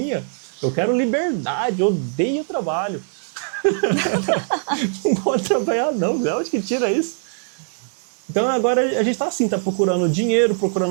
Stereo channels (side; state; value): left; silent; digital silence